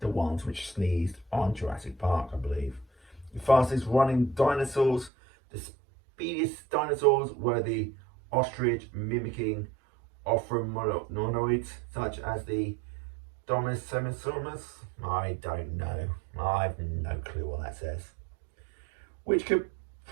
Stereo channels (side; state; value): left; drops out; at 5.1 s